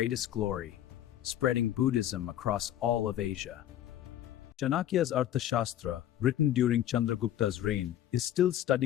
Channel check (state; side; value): quieter; right; 11.9 dB